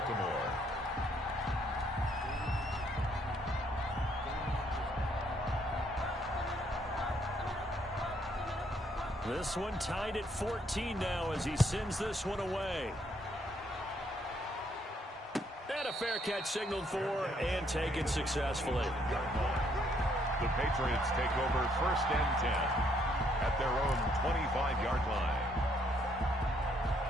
This one tied at 14 now as he sends this one away. And a fair catch signaled for and taken successfully. The Patriots take over 1st and 10 at their own 25-yard line.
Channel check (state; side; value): normal; both; correlation 0.70